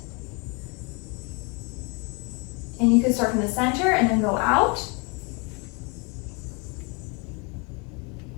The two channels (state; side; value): quieter; right; 32.1 dB